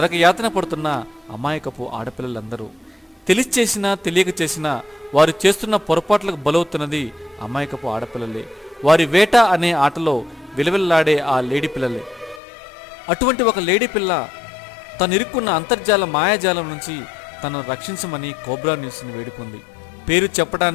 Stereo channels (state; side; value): drops out; right; at 12.4 s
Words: పడుతున్న అమాయకపు ఆడపిల్లలందరూ తెలిసి చేసినా తెలియక చేసినా వారు చేస్తున్న పొరపాట్లకు బలవుతున్నది అమాయకపు ఆడపిల్లలే. వారి వేట అనే ఆటలో విలవిల్లాడే ఆ లేడీ పిల్లలే. అటువంటి ఒక లేడీ పిల్ల తను ఇరుక్కున్న అంతర్జాల మాయాజాలం నుంచి తనను రక్షించమని కోబ్రా న్యూస్ని వేడుకుంది. పేరు